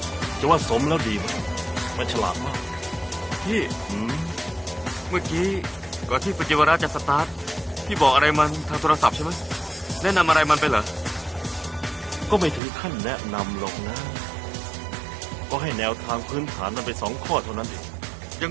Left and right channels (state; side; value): drops out; left; at 12.6 s